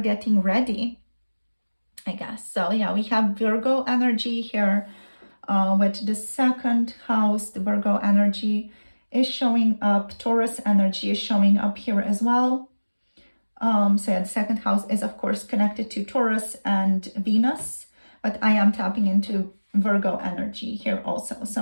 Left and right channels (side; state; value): both; inverted; correlation -1.00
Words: ready, I guess. So yeah, we have Virgo energy here with the second house. The Virgo energy is showing up. Taurus energy is showing up here as well. So yeah, the second house is of course connected to Taurus and Venus, but I am tapping into Virgo energy here also.